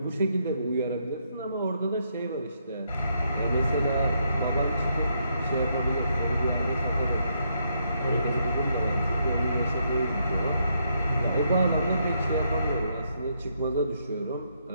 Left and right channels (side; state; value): both; inverted; correlation -0.76